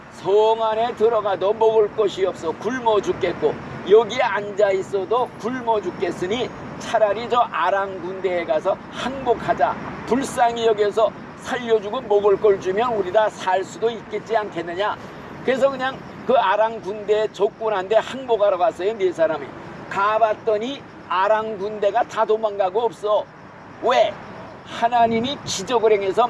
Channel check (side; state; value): both; identical; correlation 1.00